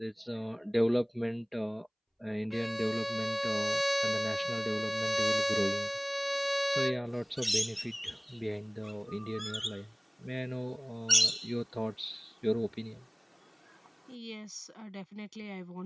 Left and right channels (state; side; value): identical; both; correlation 1.00